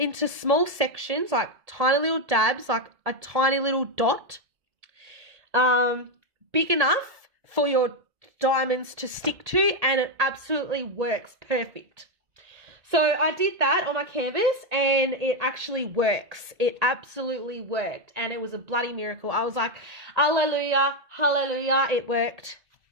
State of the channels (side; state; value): left; late; 1.7 ms